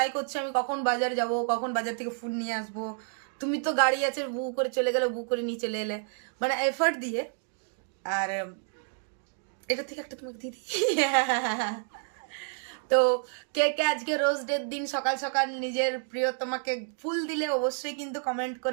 করছি আমি কখন বাজার যাব, কখন বাজার থেকে ফুড নিয়ে আসবো। তুমি তো গাড়ি আছে, বুক করে চলে গেলে, বুক করে নিয়ে চলে এলে, মানে এফর্ট দিয়ে। আর এটা থেকে একটা তোমাকে দিয়ে দিই। তো কে কে আজকে রোজ ডের দিন সকাল সকাল নিজের প্রিয় তোমাকে ফুল দিলে অবশ্যই কিন্তু কমেন্ট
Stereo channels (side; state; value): left; silent; 58 dB below the other